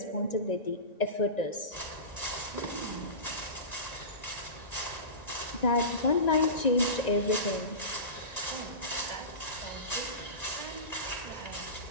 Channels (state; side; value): late; right; 1.9 ms